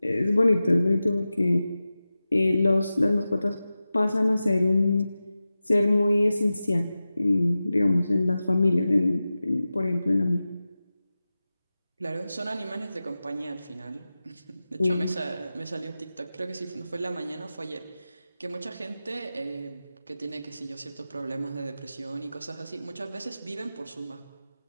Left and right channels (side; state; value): both; inverted; correlation -0.94